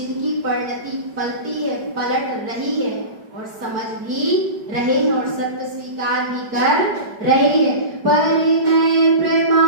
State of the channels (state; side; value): late; left; 5.0 ms